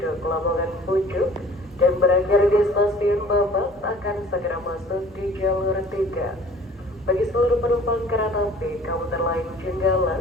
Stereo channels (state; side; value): normal; both; correlation 0.49